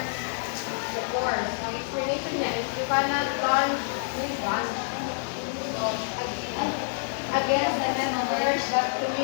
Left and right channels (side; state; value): right; silent; digital silence